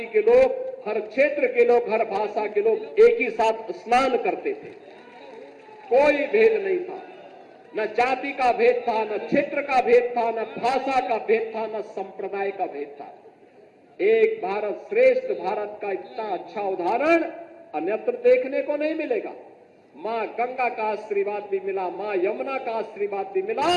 के लोग, हर क्षेत्र के लोग, हर भाषा के लोग एक ही साथ स्नान करते थे। कोई भेद नहीं था, न जाति का भेद था, न क्षेत्र का भेद था, न भाषा का भेद था, न संप्रदाय का भेद था। एक भारत श्रेष्ठ भारत का इतना अच्छा उदाहरण अन्यत्र देखने को नहीं मिलेगा। मां गंगा का आशीर्वाद भी मिला, मां यमुना का आशीर्वाद भी मिला,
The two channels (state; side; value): identical; both; correlation 1.00